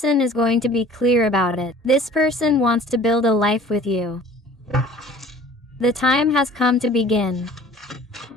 is going to be clear about it. This person wants to build a life with you. The time has come to begin.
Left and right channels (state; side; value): normal; both; correlation 0.47